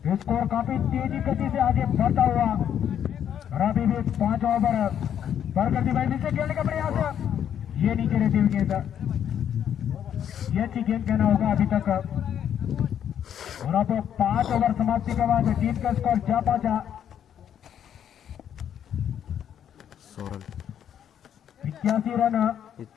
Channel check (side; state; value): right; quieter; 9.4 dB